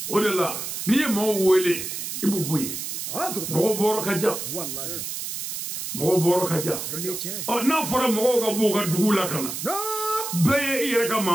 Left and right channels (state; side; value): noise; right; hiss, 5 dB below the sound